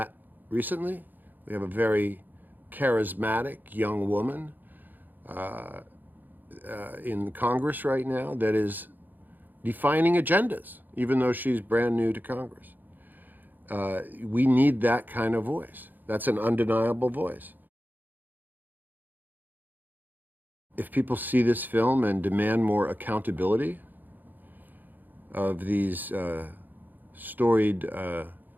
recently. We have a very charismatic young woman in Congress right now that is defining agendas, even though she's brand new to Congress. We need that kind of voice. That's an undeniable voice. If people see this film and demand more accountability of these storied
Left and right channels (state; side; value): late; left; 0.086 ms